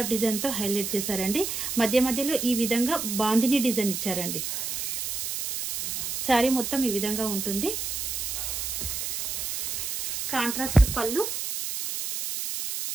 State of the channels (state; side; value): noise; right; hiss, 3 dB below the sound